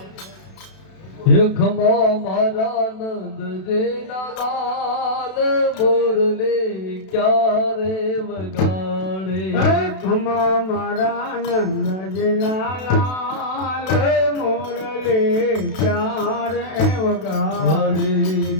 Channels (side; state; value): right; late; 32 ms